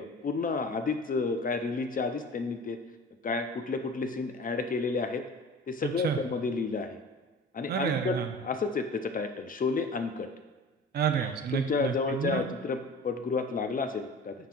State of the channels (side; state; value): both; normal; correlation 0.40